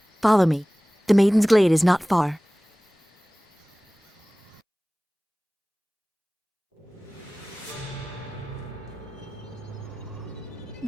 Follow me. The Maiden's Glade is not far.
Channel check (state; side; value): normal; both; correlation 0.98